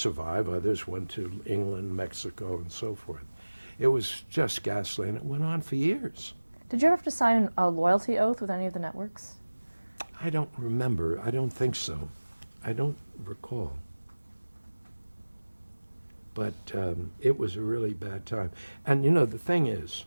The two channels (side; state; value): both; inverted; correlation -1.00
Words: others went to England, Mexico, and so forth. It was just ghastly, and it went on for years. Did you ever have to sign a loyalty oath with any of the networks? I don't remember. I don't think so. I don't recall. But it was a really bad time. And you know, the thing is,